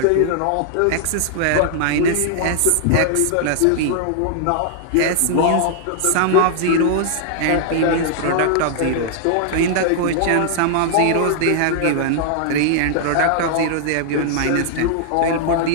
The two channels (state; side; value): different; both; correlation -0.01